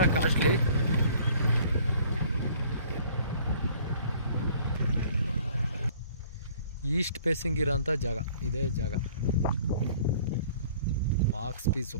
ಕಾಸ್ಟ್ಲಿ. ಈಸ್ಟ್ ಫೇಸಿಂಗ್ ಇರೋಂಥ ಜಾಗ ಇದೇ ಜಾಗ. Box piece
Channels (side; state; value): both; inverted; correlation -0.53